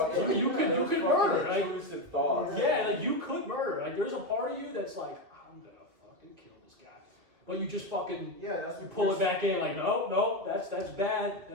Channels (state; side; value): late; left; 2.6 ms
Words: You could those murder. fucking intrusive thoughts. Yeah, like you could murder. Like there's a part of you that's like, I'm gonna fucking kill this guy. But you just fucking you pull it back in like, no, that's bad.